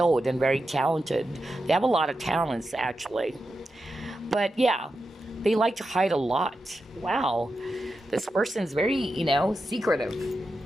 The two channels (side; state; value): both; normal; correlation 0.89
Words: and very talented. They have a lot of talents, actually. But yeah, they like to hide a lot. Wow. This person is very, secretive.